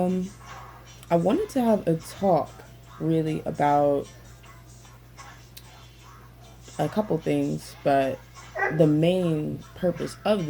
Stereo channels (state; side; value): identical; both; correlation 1.00